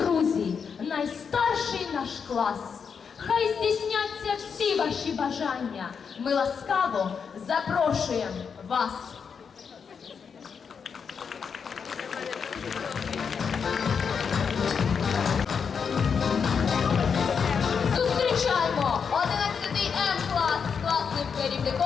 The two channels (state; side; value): quieter; right; 6.3 dB